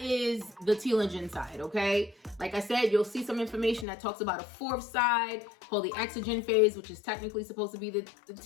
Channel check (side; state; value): right; drops out; at 3.9 s